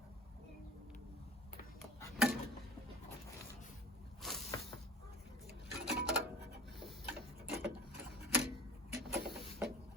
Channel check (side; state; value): both; normal; correlation 0.39